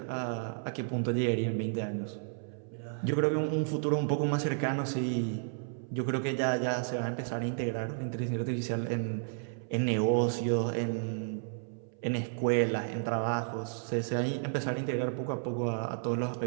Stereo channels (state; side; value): silent; left; 56 dB below the other